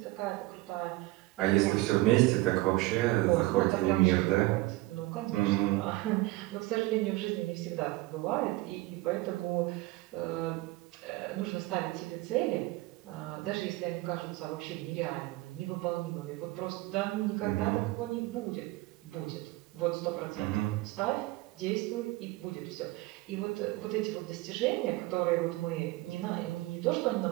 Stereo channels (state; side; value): quieter; left; 19.8 dB